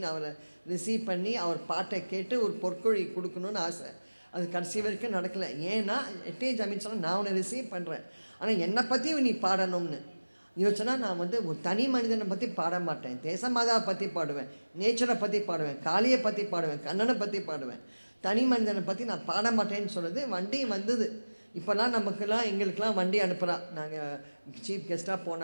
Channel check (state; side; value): inverted; both; correlation -1.00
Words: அவரை ரிசீவ் பண்ணி அவர் பாட்டை கேட்டு ஒரு பொற்கொழி கொடுக்கணுன்னு ஆசை. அது கடைசி வரைக்கும் நடக்கலை. ஏன்னா எட்டே ஜமீன் சொன்னால் நான் உன்னை ரிசீவ் பண்ணுறேன், ஆனால் என்னை பற்றி நீ பாடணும்னு யோசிச்சனா நான் வந்து ஒரு தனி மனிதனை பற்றி பாட மாட்டேன், தேசமாதாவை பற்றி பாடுவேன், நேச்சரை பற்றி பாடுவேன், காளியை பற்றி பாடுவேன், கண்ணனை பற்றி பாடுவேன், தனி மனிதனை பற்றி நான் பாட மாட்டேன்னு சொல்லுது. வண்டி வந்தது. இப்போல்லாம் நமக்கெல்லாம் எங்களுக்கெல்லாம் வண்டி அனுப்புகிறா. நாங்கள் சீஃப் கெஸ்ட்டாக